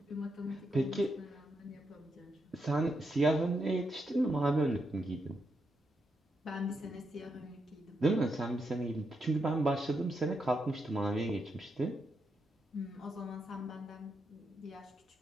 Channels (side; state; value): both; normal; correlation 0.82